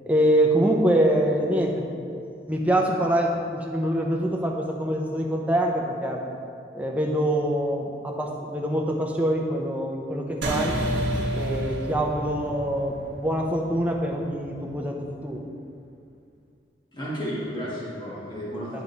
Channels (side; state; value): both; normal; correlation 0.63